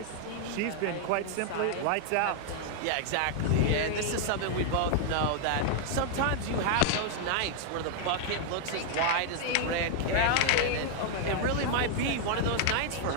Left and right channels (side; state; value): both; different; correlation 0.00